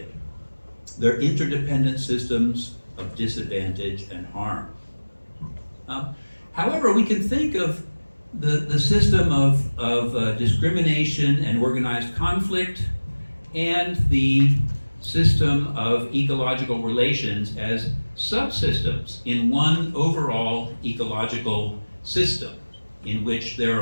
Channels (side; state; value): both; inverted; correlation -1.00